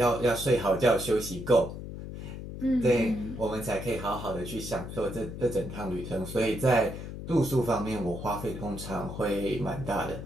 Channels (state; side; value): noise; left; hum, 9 dB below the sound